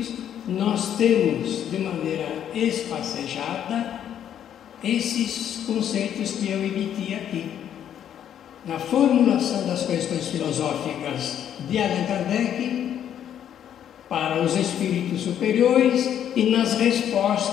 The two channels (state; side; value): quieter; right; 9.9 dB